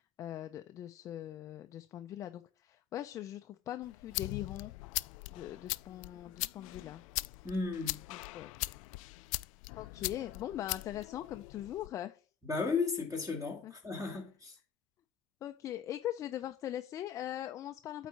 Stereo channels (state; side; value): quieter; right; 8.4 dB